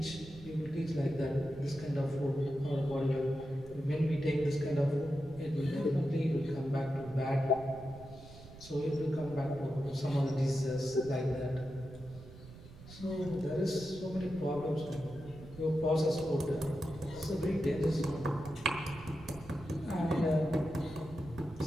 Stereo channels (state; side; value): noise; right; rumble, 17 dB below the sound